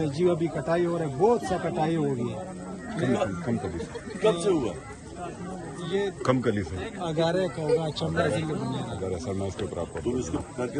जी अभी कटाई हो रही है, बहुत सा कटाई हो गई है। कब से हुआ? ये कम कली से अगारे का होगा, चंबा जिले बुनेर अगर सर मैं उसके ऊपर आपको तुम इसको करके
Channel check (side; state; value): both; identical; correlation 1.00